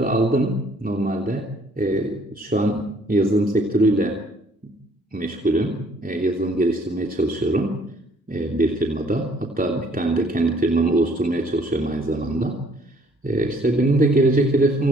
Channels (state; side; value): normal; both; correlation 0.61